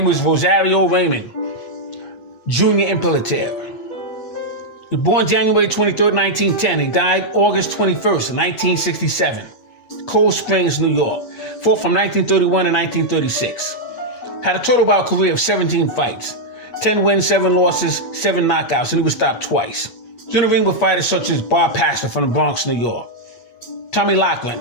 was Rosario Raymond Jr. Imperator. He was born January 23rd, 1910. He died August 21st, 1967. Cold Springs, New York. Fought from 1931 to 1936. Had a total bout career of 17 fights. 10 wins, 7 losses, 7 knockouts, and he was stopped twice. He was in the ring with fighters such as Bar Pastor from the Bronx, New York. Tommy Laughlin,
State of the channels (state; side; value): late; right; 8.4 ms